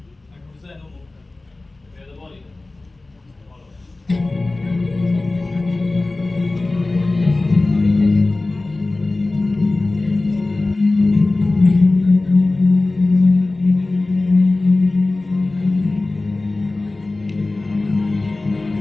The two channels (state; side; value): quieter; right; 3.1 dB